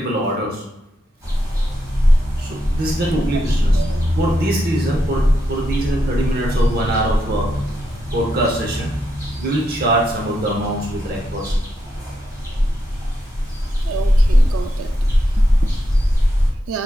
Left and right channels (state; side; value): normal; both; correlation 0.83